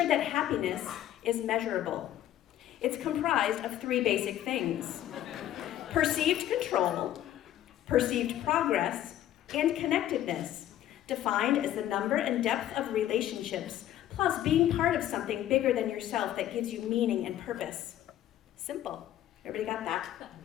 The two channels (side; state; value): right; quieter; 12.4 dB